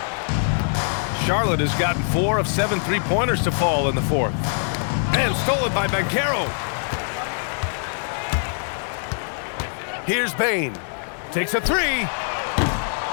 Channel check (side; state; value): right; silent; digital silence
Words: Charlotte has gotten 4 of 7 three-pointers to fall in the fourth. And stolen by Banchero. Here's Bain. Takes a three.